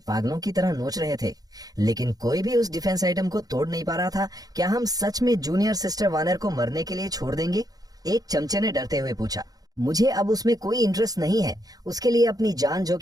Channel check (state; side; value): late; left; 0.18 ms